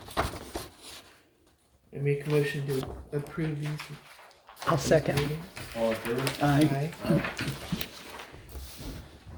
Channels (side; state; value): both; identical; correlation 1.00